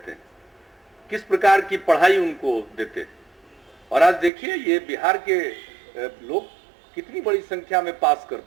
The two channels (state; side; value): drops out; left; at 4.3 s